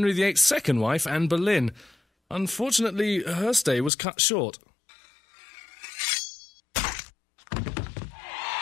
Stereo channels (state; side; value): drops out; right; at 3.9 s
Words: VIII's second wife, Anne Boleyn. Unfortunately, her stay was cut short.